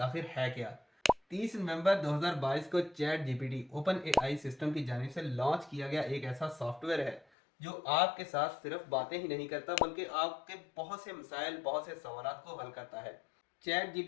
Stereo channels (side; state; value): right; drops out; at 7.2 s